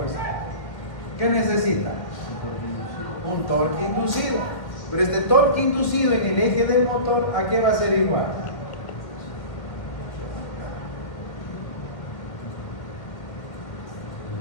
¿Qué necesita? un torque inducido. Pero este torque inducido en el eje del motor, ¿a qué va a ser igual?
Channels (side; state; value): right; late; 1.6 ms